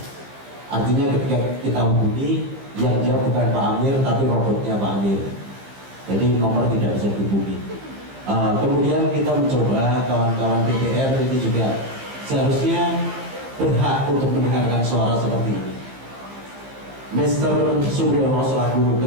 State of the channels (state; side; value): late; left; 15 ms